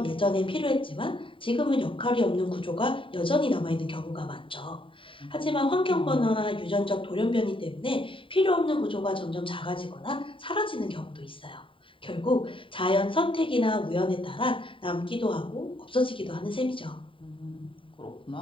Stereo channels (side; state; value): right; late; 0.25 ms